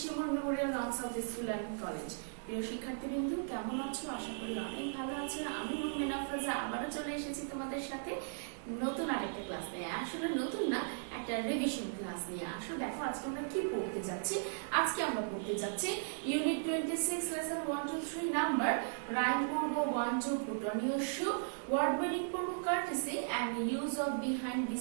Memorial Arts of the School and College. প্রিয় শিক্ষার্থীবৃন্দ, কেমন আছো? আশা করি অনেক ভালো আছো। আমি মুমিন আফরোজা আবারও চলে এসেছি তোমাদের সাথে নতুন আরেকটা ক্লাস নিয়ে। আসলে নতুন না, একটা রিভিশন ক্লাস নিয়ে। আসলে দেখো আজকে আমরা কি পড়তে যাচ্ছি। আজকে আমরা পড়তে যাচ্ছি ইউনিট 26 লেসন 1 2 3 নাম্বার রাইম পড়ব 1 2 put on your shoe, word meaning পড়ব courtesy and use of behind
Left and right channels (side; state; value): left; silent; digital silence